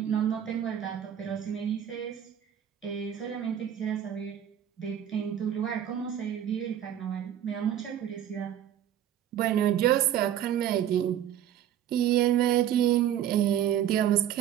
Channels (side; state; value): left; quieter; 10.5 dB